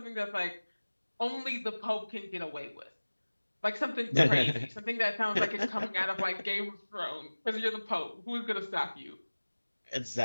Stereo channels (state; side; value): inverted; both; correlation -1.00